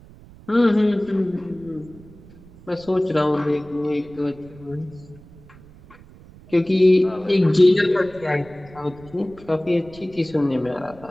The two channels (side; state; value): right; noise; rumble, 22 dB below the sound